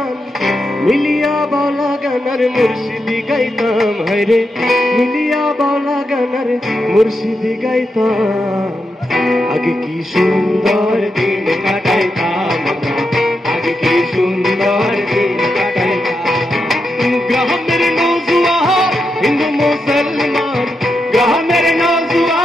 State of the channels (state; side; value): normal; both; correlation 0.85